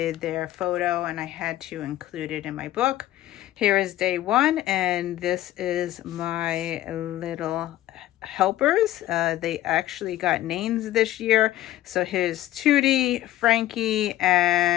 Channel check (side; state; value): right; quieter; 14.5 dB